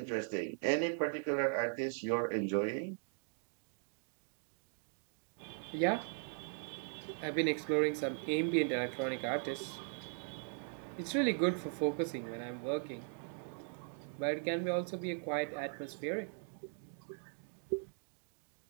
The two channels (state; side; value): quieter; left; 39.7 dB